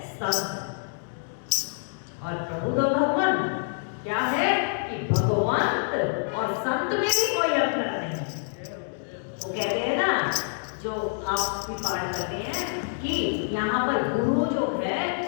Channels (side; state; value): right; silent; digital silence